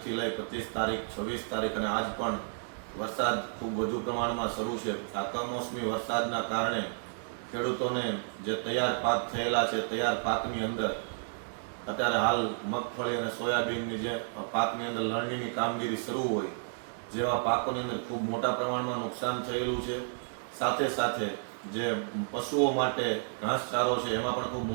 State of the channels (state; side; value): silent; left; digital silence